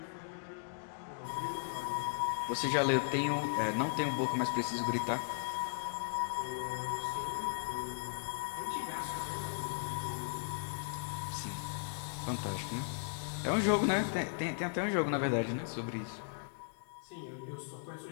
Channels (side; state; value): right; silent; digital silence